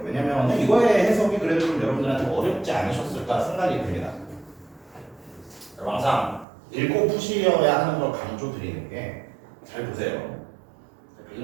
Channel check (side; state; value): left; drops out; at 6.5 s